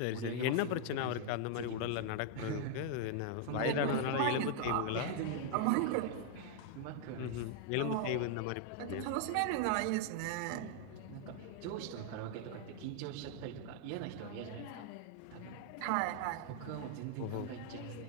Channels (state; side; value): different; both; correlation 0.00